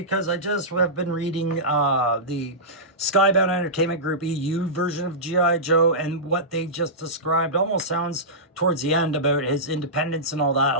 I just have been reading the Skybound Entertainment Group EU version of G.I. Joe, and what they just described almost sounds towards the end about his independence and all that, a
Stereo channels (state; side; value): normal; both; correlation -0.16